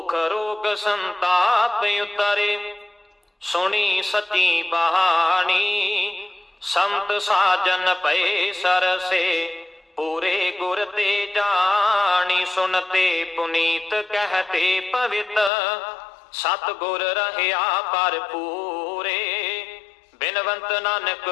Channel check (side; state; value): right; drops out; at 15.5 s